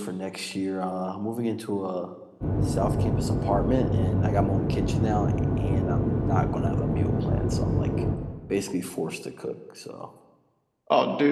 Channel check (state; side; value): identical; both; correlation 1.00